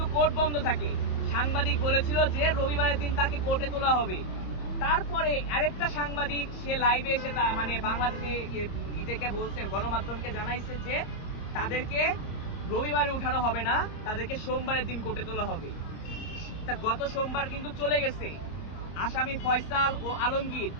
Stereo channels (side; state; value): right; late; 28 ms